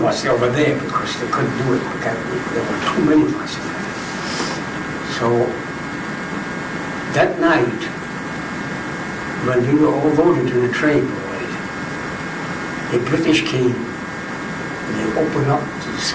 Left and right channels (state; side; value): identical; both; correlation 1.00